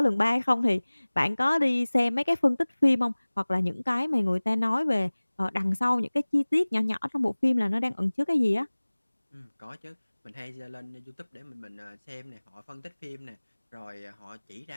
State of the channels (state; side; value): inverted; both; correlation -1.00